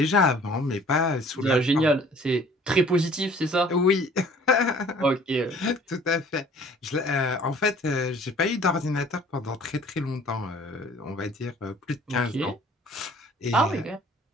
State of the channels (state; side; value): normal; both; correlation 0.52